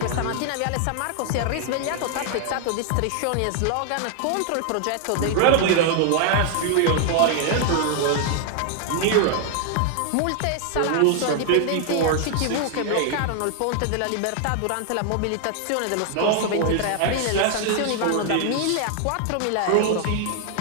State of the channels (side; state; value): both; different; correlation 0.00